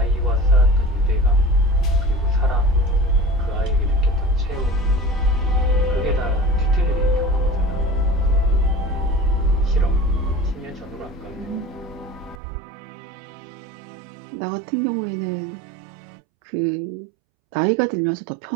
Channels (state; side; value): drops out; left; at 12.4 s